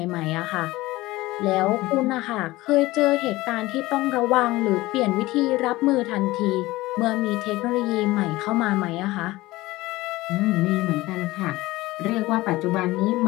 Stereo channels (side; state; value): right; quieter; 18.9 dB